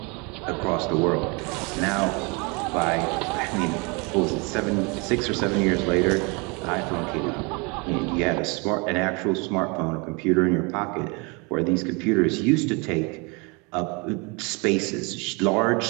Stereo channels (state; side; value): quieter; left; 30.1 dB